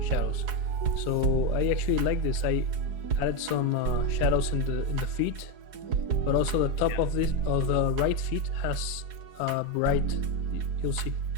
so I actually like this. I added some shadows in the feet, but also the top of the right feet has bright. You'll see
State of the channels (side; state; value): left; late; 4.8 ms